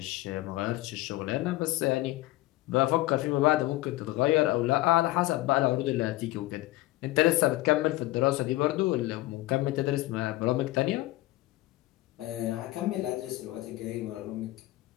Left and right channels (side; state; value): right; quieter; 18.1 dB